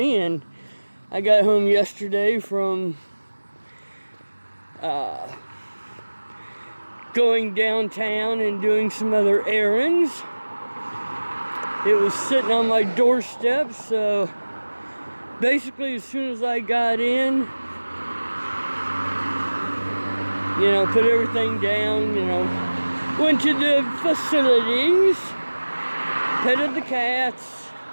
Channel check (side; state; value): both; inverted; correlation -1.00